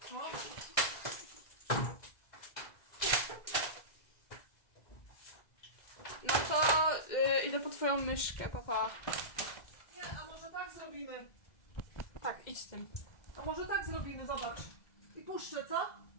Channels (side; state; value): right; late; 2.0 ms